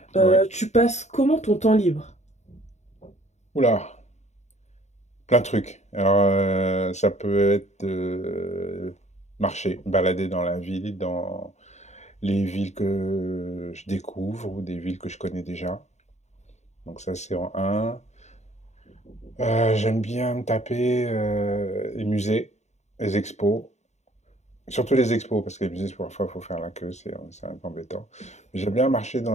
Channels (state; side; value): late; right; 0.33 ms